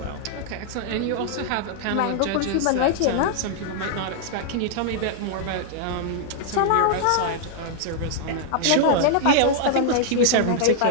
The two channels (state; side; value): different; both; correlation -0.01